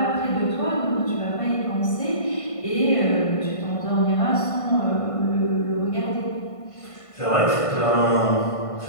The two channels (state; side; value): late; right; 1.5 ms